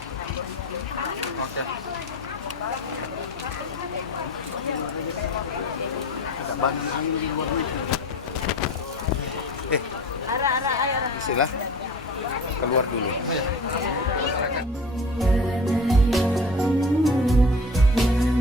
Oke. Istilah keluar dulu.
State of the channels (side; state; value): both; normal; correlation 0.37